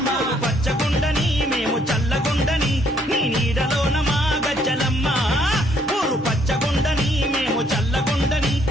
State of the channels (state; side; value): normal; both; correlation 0.67